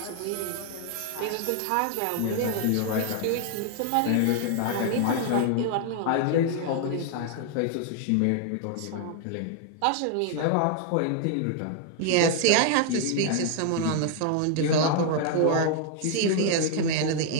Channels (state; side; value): different; both; correlation 0.00